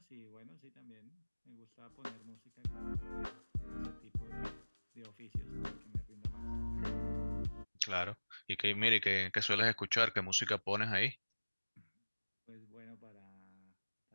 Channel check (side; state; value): both; inverted; correlation -1.00